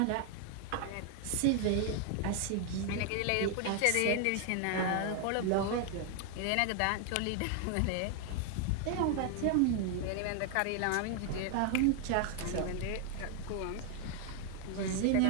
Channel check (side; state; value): both; different; correlation 0.00